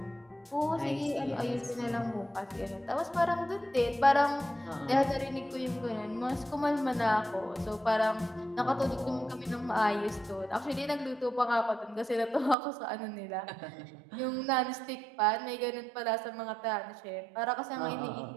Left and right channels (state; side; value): drops out; left; at 12.6 s